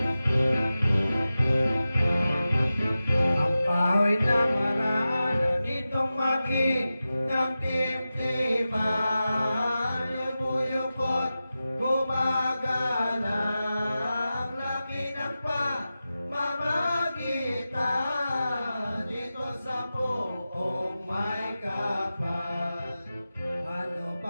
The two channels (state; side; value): inverted; both; correlation -0.94